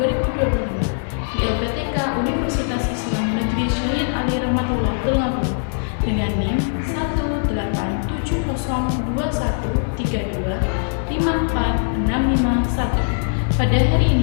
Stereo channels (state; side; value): silent; right; 65 dB below the other